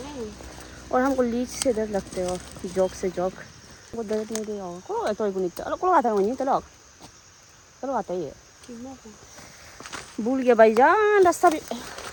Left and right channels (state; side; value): identical; both; correlation 1.00